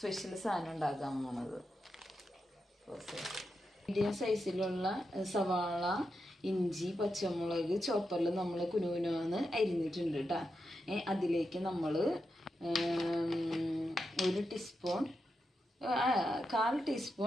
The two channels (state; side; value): normal; both; correlation 0.87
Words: സാധനം ഉണ്ടാക്കാൻ പോണത്. മീഡിയം സൈസിലുള്ള സവാള, ഇഞ്ചി, പച്ചമുളക് ചോപ്പറിൽ നമ്മൾ കുനുകുനാന്ന് അരിഞ്ഞിട്ടുണ്ട് കേട്ടോ. അതിലേക്ക് നമ്മൾ 1 ടീസ്പൂൺ, 1/4